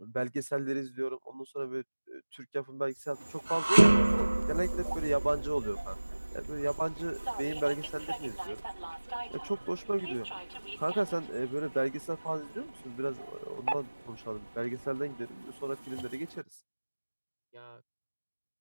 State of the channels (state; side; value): inverted; both; correlation -1.00